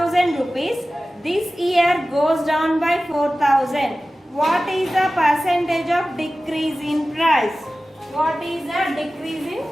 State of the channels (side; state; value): both; normal; correlation 0.96